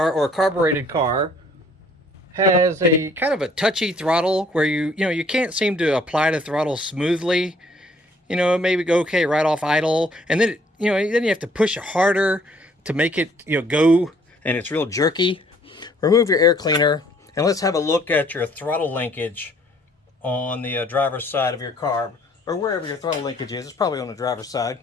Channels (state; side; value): normal; both; correlation 0.61